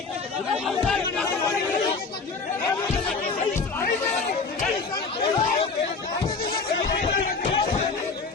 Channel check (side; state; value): right; quieter; 4.5 dB